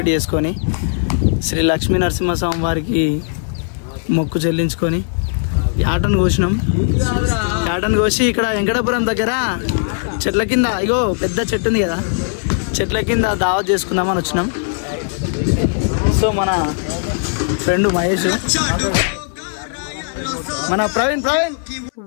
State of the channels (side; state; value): right; silent; 67 dB below the other